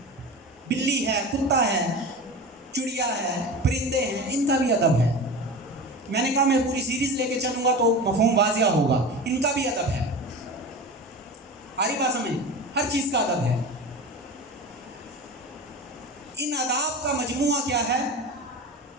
بلی ہے، کتا ہے، چڑیا ہے، پرندے ہیں، ان کا بھی ادب ہے۔ میں نے کہا میں پوری سیریز لے کے چلوں گا تو مفہوم واضح ہوگا، ان کا بھی ادب ہے۔ آری بات سمجھ؟ ہر چیز کا ادب ہے۔ ان آداب کا مجموعہ کیا ہے؟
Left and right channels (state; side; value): normal; both; correlation 0.30